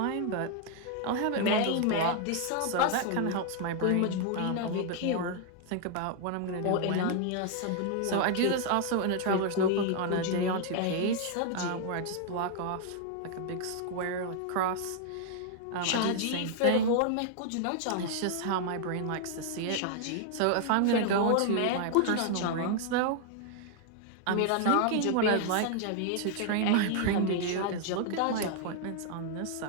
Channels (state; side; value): different; both; correlation 0.00